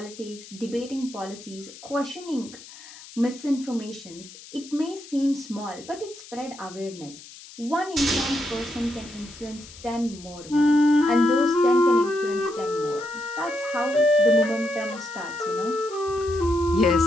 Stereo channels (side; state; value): left; noise; hiss, 18 dB below the sound